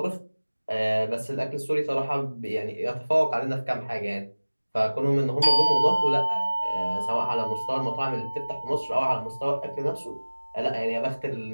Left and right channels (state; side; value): inverted; both; correlation -1.00